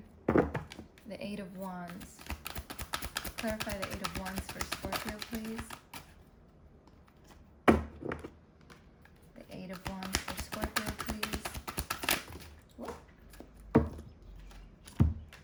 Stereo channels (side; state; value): both; identical; correlation 1.00